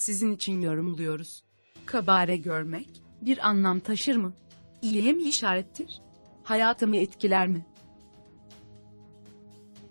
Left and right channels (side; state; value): both; inverted; correlation -1.00